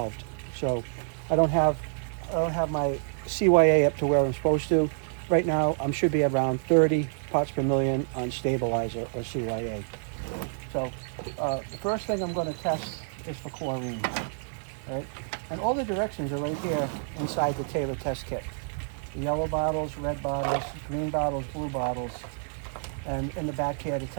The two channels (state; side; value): silent; left; digital silence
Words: so I don't have my CYA up to where I'm supposed to. Right now, I should be around 30 parts per million on stabilizer or CYA. So the first thing I'm going to test is for chlorine, right? And all the directions are right here inside the Taylor test kit. The yellow bottles, red bottles, green bottles, blue bottles, and in the back here to